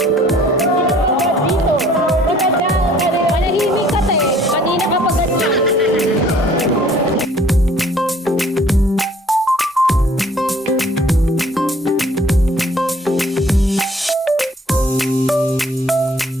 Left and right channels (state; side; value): normal; both; correlation 0.56